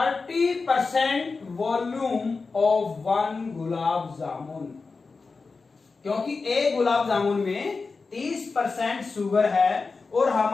volume of 1 gulab jamun. क्योंकि एक गुलाब जामुन में 30% शुगर है और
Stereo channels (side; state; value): right; quieter; 4.3 dB